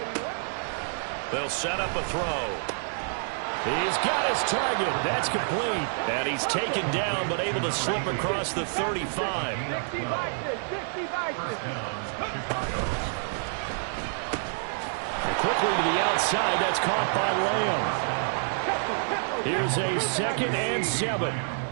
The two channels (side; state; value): left; silent; 59 dB below the other